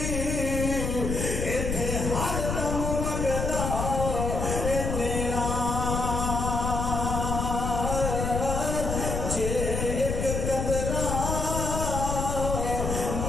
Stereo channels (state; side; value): noise; left; rumble, 2 dB below the sound